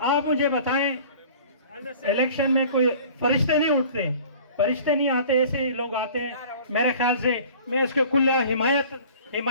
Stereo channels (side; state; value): both; inverted; correlation -0.46